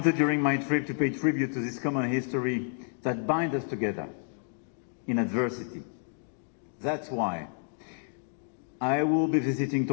during my trip to pay tribute to this common history that binds us together in adversity. That's why I will be visiting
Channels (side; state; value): right; silent; digital silence